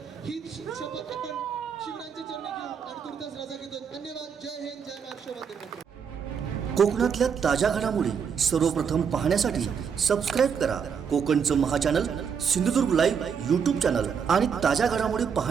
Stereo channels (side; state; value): left; quieter; 6.8 dB